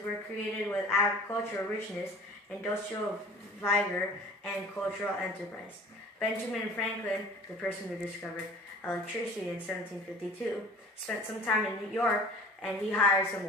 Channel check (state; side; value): normal; both; correlation 0.46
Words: were created with agricultural richness, industrial vigor, and cultural enterprise. Benjamin Franklin, the person who discovered electricity in 1752, spent some time in New York, and he hired some